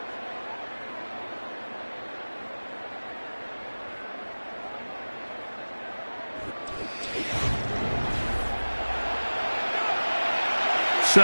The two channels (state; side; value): inverted; both; correlation -1.00